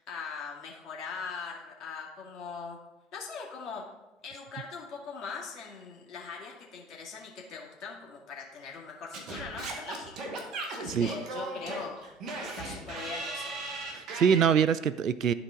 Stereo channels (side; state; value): left; quieter; 4.6 dB